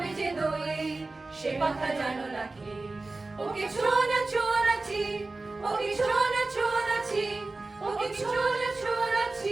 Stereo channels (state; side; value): quieter; left; 3.3 dB